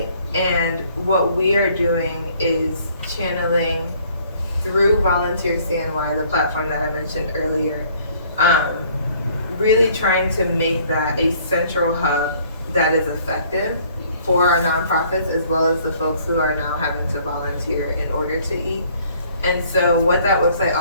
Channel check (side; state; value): both; inverted; correlation -0.59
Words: and what we are doing is channeling through Volunteer CNY, the platform that I mentioned earlier, really trying to make that a central hub that is effective for our nonprofits as well as the folks who are now having to volunteer in order to eat. And so what that website